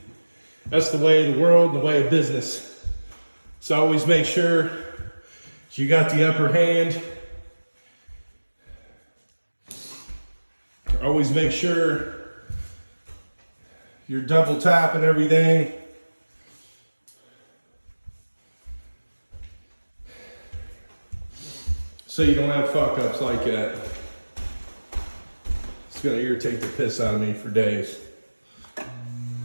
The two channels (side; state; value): both; inverted; correlation -1.00